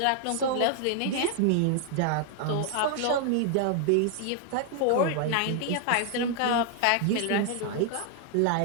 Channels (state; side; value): different; both; correlation 0.00